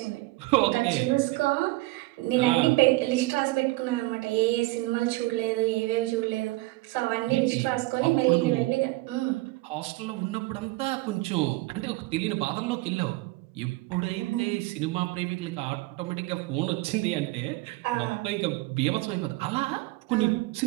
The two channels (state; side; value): quieter; left; 20.9 dB